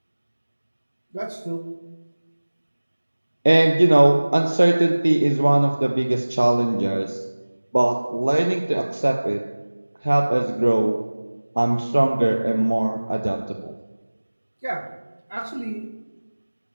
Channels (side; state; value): both; inverted; correlation -1.00